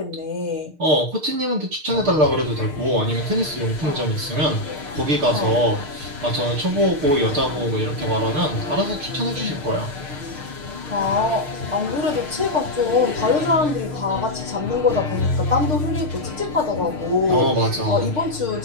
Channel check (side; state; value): left; late; 6.6 ms